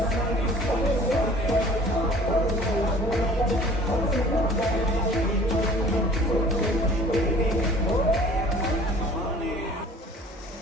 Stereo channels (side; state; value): both; normal; correlation 0.49